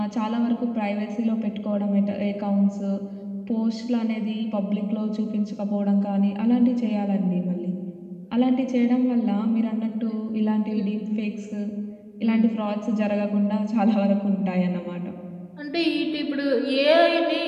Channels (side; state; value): both; identical; correlation 1.00